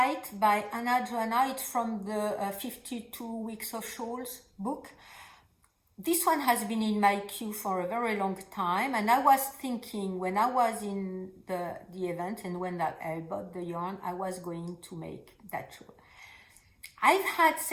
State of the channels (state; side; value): identical; both; correlation 1.00